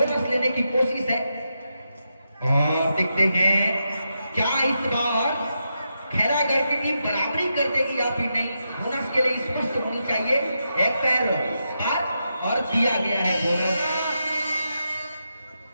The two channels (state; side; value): inverted; both; correlation -0.85